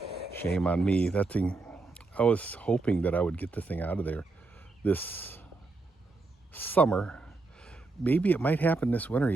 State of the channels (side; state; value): left; quieter; 3.6 dB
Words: Shame on me. That thing, I was hoping that I would get the thing out of there this summer. Maybe it might happen this winter